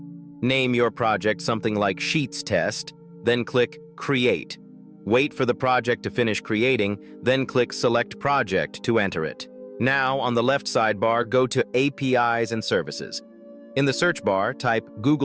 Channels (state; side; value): identical; both; correlation 1.00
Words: Name your project something like Sheets Test, then click Create. Wait for the project to finish creating, then click Select Project to enter it. Now, on the left sidebar, go to APIs and Services. In the search bar, type